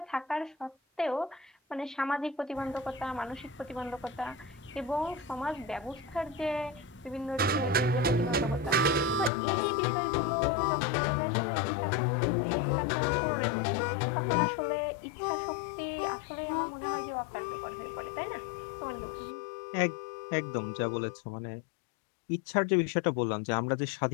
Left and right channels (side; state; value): right; drops out; at 9.3 s